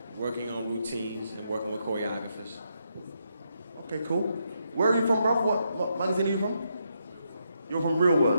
working on routines and working with choreographers. Okay, cool. Where are you from, bruv? What magazine are you from? You're from Real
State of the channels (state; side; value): inverted; both; correlation -0.80